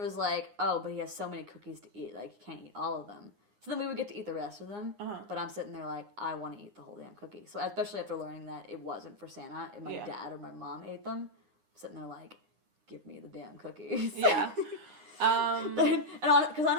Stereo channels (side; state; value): left; late; 9.7 ms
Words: like, oh, but he has so many cookies to eat. Like, he can't eat all of them. So then we would get to eat the rest of them. Uh-huh. But I'm sitting there like, I want to eat the whole damn cookie. So especially after learning that it wasn't for Santa, and my dad or my mom ate them, I'm sitting there like, give me the damn cookies. Yeah. Because